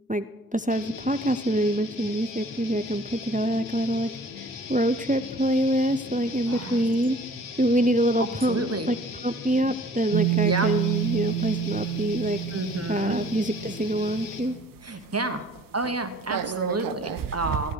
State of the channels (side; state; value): both; normal; correlation 0.53